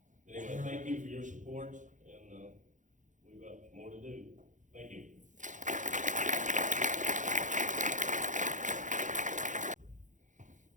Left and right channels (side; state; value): left; late; 0.36 ms